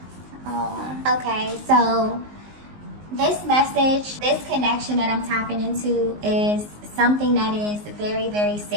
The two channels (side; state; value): left; late; 19 ms